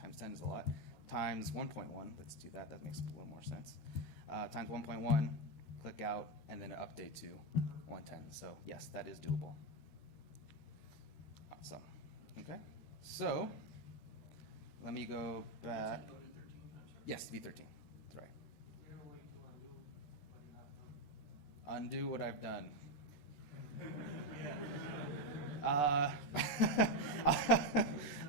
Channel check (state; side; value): late; right; 14 ms